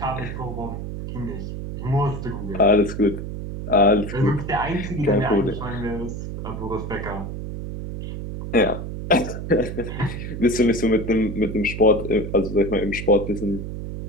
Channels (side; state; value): right; noise; hum, 7 dB below the sound